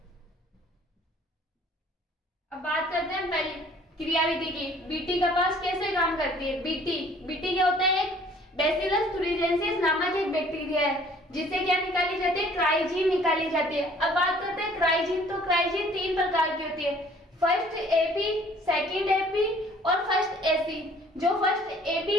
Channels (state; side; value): normal; both; correlation 0.55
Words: अब बात करते हैं पहली क्रियाविधि की, बीटी कपास कैसे काम करती है। बीटी क्या होता है, एक बैसिलस thuringiensis नामक एक बैक्टीरिया है, जिससे क्या निकाली जाती है, क्राइजीन निकाली जाती है। अब बात करते हैं क्राइजीन, तो क्राइजीन 3 प्रकार की होती है, फर्स्ट एपी, सेकंड एपी और फर्स्ट एसी। जो फर्स्ट